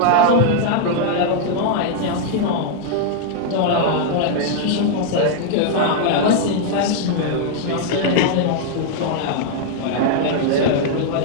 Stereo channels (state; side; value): different; both; correlation 0.00